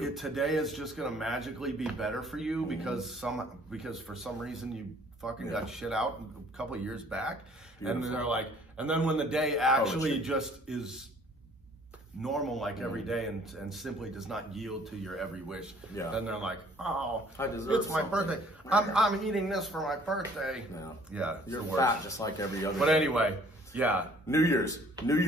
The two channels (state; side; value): normal; both; correlation 0.57